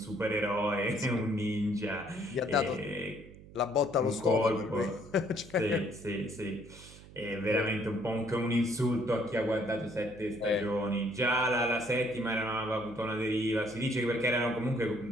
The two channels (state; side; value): noise; right; hum, 19 dB below the sound